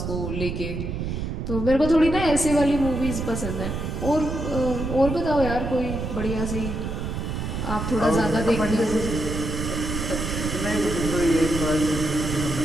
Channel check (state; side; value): noise; right; rumble, 4 dB below the sound